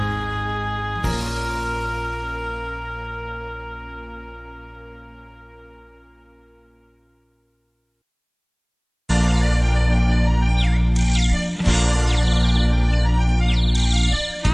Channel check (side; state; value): both; identical; correlation 1.00